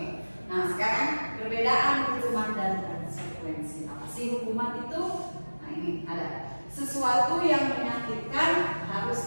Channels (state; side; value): inverted; both; correlation -1.00